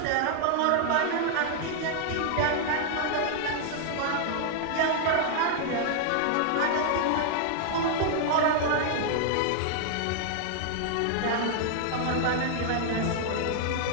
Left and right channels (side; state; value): both; different; correlation 0.00